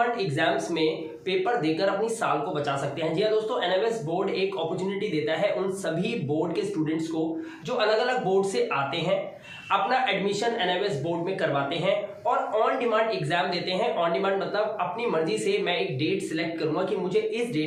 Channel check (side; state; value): both; identical; correlation 1.00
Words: एग्जाम्स में पेपर देकर अपनी साल को बचा सकते हैं। जी हाँ दोस्तों, एनएमएस बोर्ड एक अपॉर्चुनिटी देता है उन सभी बोर्ड के स्टूडेंट्स को जो अलग अलग बोर्ड से आते हैं, अपना एडमिशन एनएमएस बोर्ड में करवाते हैं और ऑन डिमांड एग्जाम देते हैं। ऑन डिमांड मतलब अपनी मर्जी से मैं एक डेट सिलेक्ट करूंगा कि मुझे इस